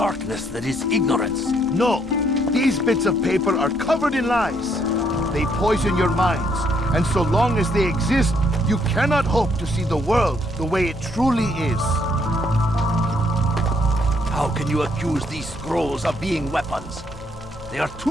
that is ignorance. No, these bits of paper are covered in lies. They poison your minds, and so long as they exist, you cannot hope to see the world the way it truly is. How can you accuse these scrolls of being weapons? They are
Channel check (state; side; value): noise; right; hum, 22 dB below the sound